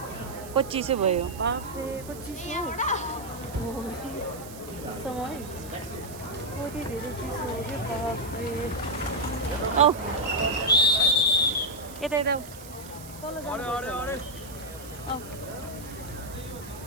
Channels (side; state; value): right; noise; hiss, 16 dB below the sound